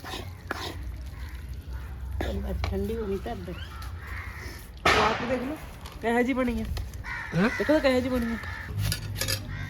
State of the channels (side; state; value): both; identical; correlation 1.00